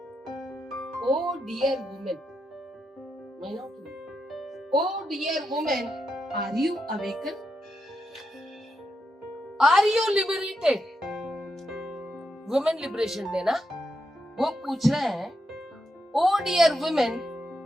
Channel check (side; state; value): both; normal; correlation 0.84